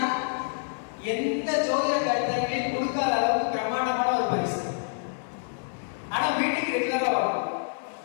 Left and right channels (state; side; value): silent; right; 60 dB below the other